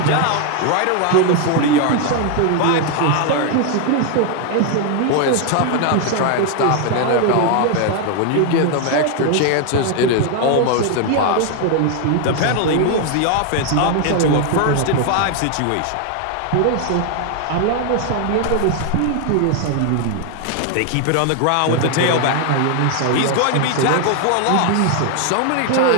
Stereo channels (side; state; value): both; different; correlation 0.00